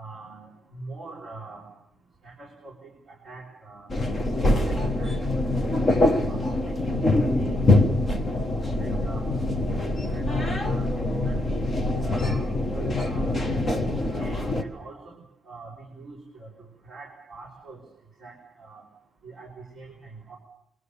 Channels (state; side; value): normal; both; correlation 0.78